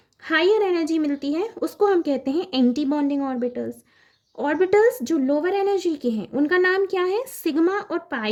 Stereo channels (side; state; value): both; identical; correlation 1.00